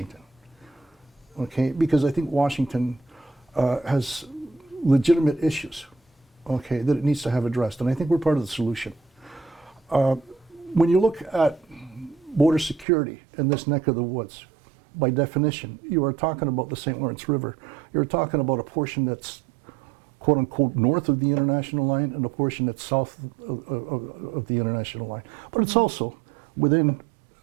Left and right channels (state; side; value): drops out; left; at 12.9 s